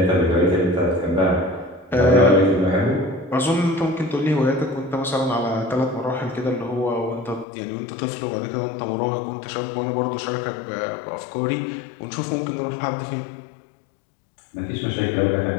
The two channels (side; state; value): right; drops out; at 7.5 s